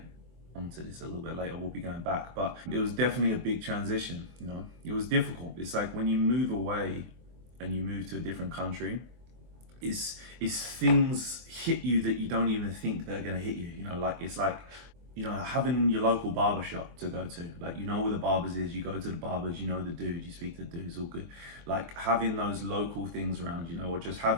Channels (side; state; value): left; late; 24 ms